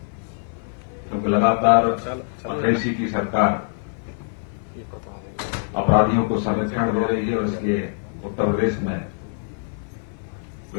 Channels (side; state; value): right; silent; 56 dB below the other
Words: क्योंकि लगातार अखिलेश जी की सरकार अपराधियों को संरक्षण दे रही है और इसलिए उत्तर प्रदेश में